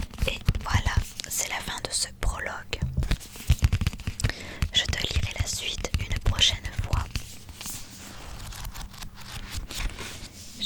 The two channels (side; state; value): both; identical; correlation 1.00